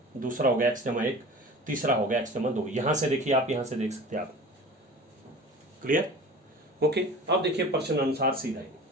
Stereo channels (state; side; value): normal; both; correlation 0.38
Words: दूसरा हो गया x जमा 1, तीसरा हो गया x जमा 2। यहां से देखिए आप, यहां से देख सकते हैं आप। क्लियर? ओके, अब देखिए प्रश्न अनुसार सीधा ही,